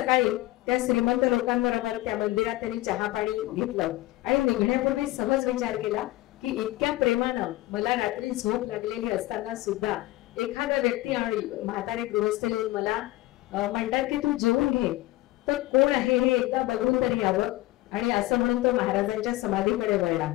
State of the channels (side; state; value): right; quieter; 18.1 dB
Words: त्या श्रीमंत लोकांबरोबर त्या मंदिरात त्यांनी चहा पाणी घेतलं आणि निघण्यापूर्वी सहज विचार केला की इतक्या प्रेमानं मला रात्री झोप लागलेली असताना सुद्धा एखादा व्यक्ती आणि म्हातारे गृहस्थ येऊन मला म्हणतात की तू जेवून घे, तर कोण आहे हे एकदा बघून तरी यावं. आणि असं म्हणून तो महाराजांच्या समाधीकडे वळला.